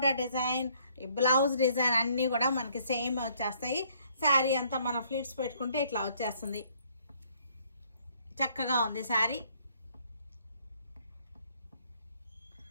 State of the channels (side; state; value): both; inverted; correlation -0.65